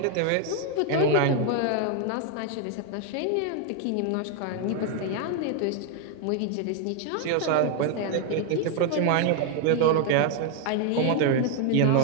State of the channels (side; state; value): both; different; correlation 0.01